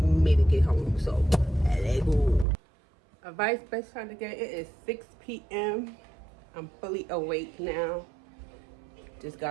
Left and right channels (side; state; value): left; drops out; at 2.5 s